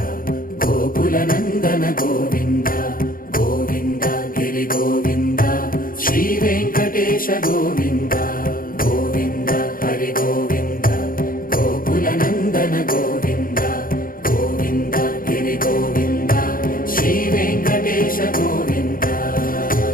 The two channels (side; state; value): right; late; 0.41 ms